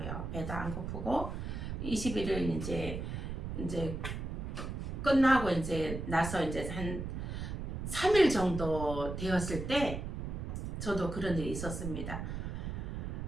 배도 안 고프고 21일 이제 끝나고 나서 한 3일 정도 되었을 때 저도 그런 일이 있었습니다.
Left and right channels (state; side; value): noise; right; rumble, 5 dB below the sound